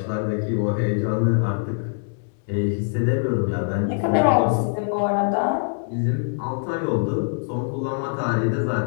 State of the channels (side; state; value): right; silent; 63 dB below the other